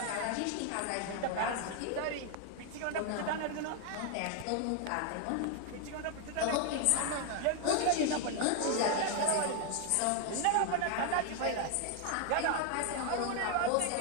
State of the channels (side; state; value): both; different; correlation 0.00